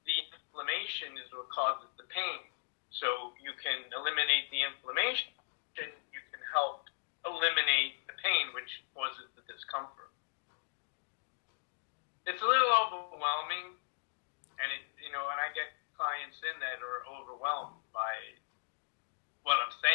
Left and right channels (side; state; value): right; silent; digital silence